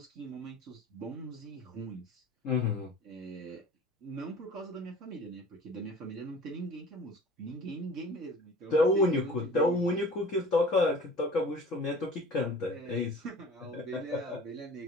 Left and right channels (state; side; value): normal; both; correlation 0.44